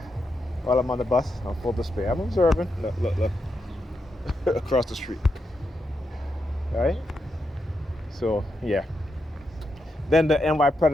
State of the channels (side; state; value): both; normal; correlation 0.84